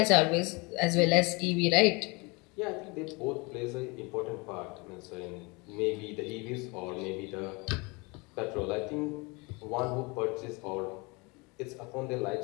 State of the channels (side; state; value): right; quieter; 27.7 dB